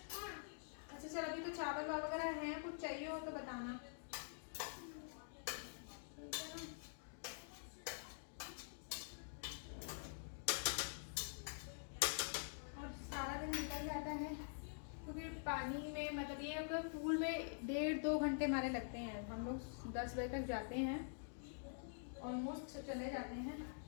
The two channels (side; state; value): right; silent; digital silence